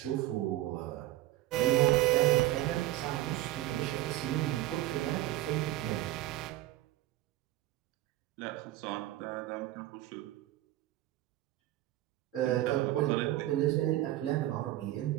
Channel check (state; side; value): quieter; left; 15.5 dB